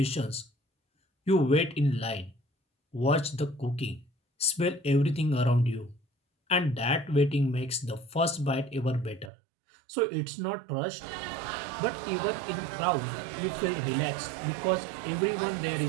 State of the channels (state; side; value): drops out; left; at 9.3 s